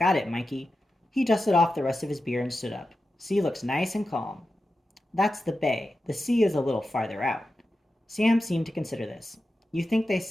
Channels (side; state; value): both; normal; correlation 0.92